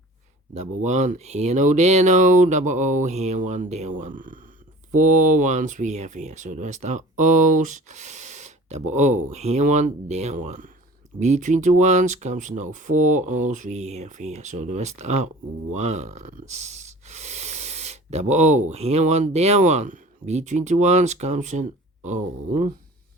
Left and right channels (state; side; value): normal; both; correlation 0.43